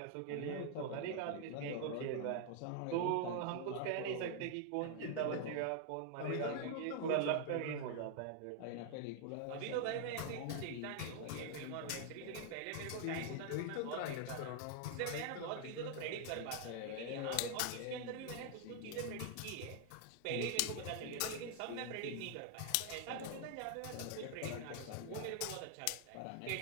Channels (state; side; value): different; both; correlation 0.00